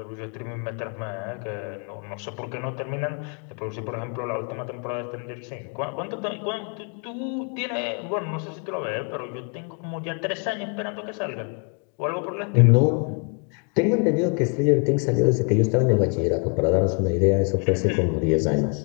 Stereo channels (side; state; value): right; quieter; 37.9 dB